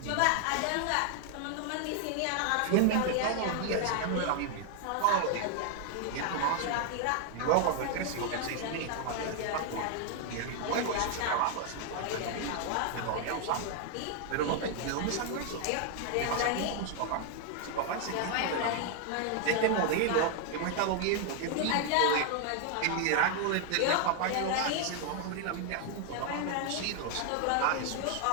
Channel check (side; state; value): both; different; correlation 0.00